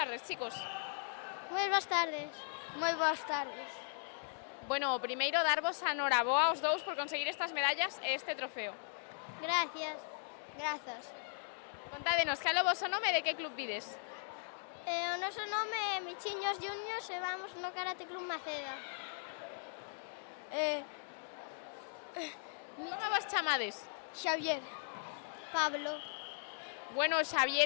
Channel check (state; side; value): silent; right; digital silence